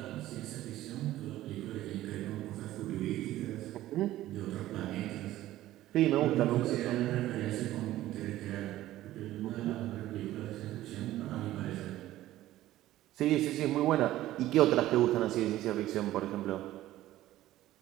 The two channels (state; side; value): quieter; left; 14.8 dB